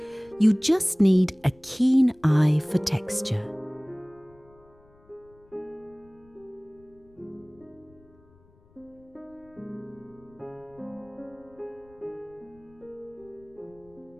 You just need a keen eye for texture.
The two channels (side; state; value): left; noise; rumble, 29 dB below the sound